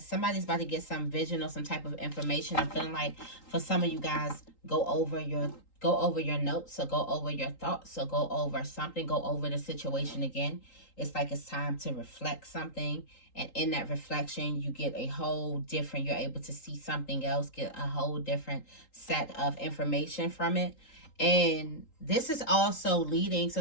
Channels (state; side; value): late; right; 3.8 ms